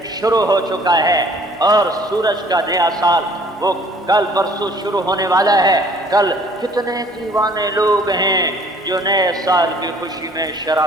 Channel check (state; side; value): normal; both; correlation 0.55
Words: شروع ہو چکا ہے، اور سورج کا نیا سال وہ کل پرسوں شروع ہونے والا ہے۔ کل کتنے دیوانے لوگ ہیں جو نئے سال کی خوشی میں